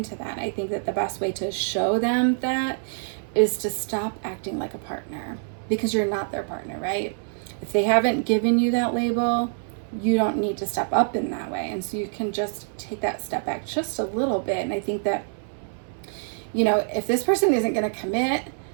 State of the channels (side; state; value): left; silent; 59 dB below the other